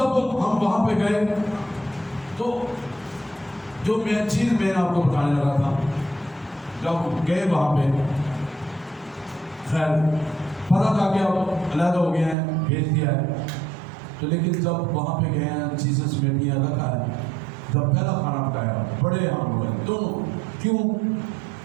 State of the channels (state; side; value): drops out; left; at 12.4 s